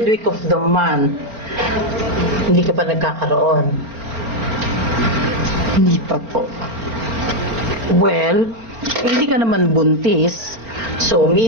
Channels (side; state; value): left; late; 4.4 ms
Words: week of the month. Hindi ka pa nagkakaroon? Hindi pa po. Well, hindi ka naman buntis. So,